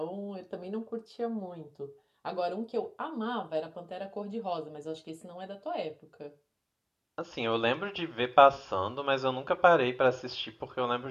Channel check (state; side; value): identical; both; correlation 1.00